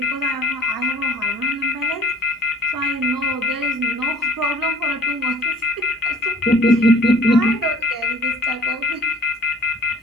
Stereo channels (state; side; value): normal; both; correlation 0.52